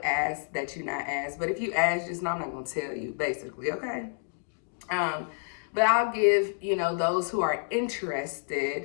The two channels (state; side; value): silent; right; digital silence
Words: ask that you not ask, but if you ask, just know I'm not gonna tell you, basically, okay? But I'll give, you know, those who are